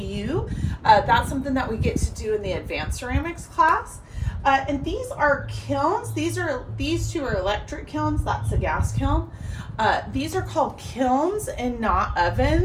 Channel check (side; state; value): both; identical; correlation 1.00